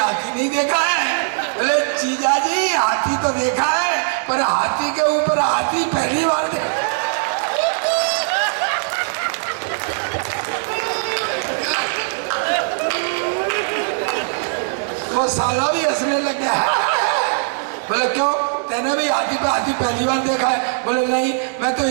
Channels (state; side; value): silent; left; 66 dB below the other